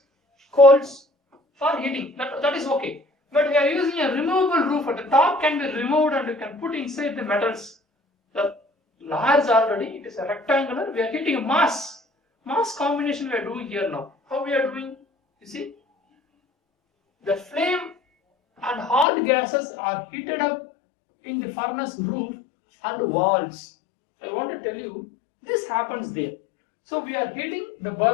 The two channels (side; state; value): right; drops out; at 19.1 s